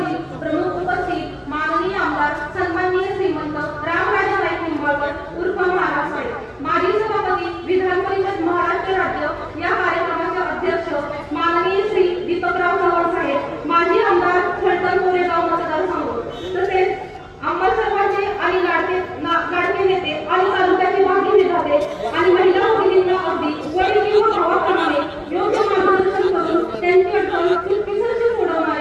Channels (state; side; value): identical; both; correlation 1.00